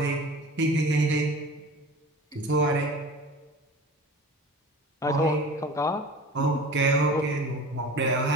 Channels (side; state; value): both; normal; correlation 0.38